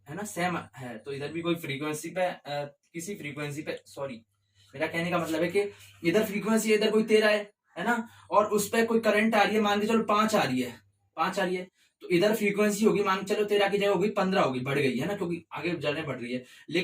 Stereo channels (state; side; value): identical; both; correlation 1.00